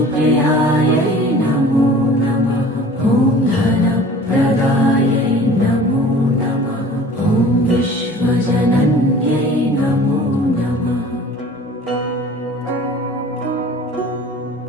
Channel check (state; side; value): normal; both; correlation 0.45